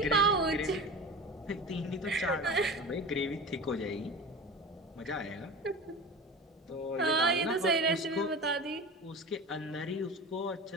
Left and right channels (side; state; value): both; normal; correlation 0.32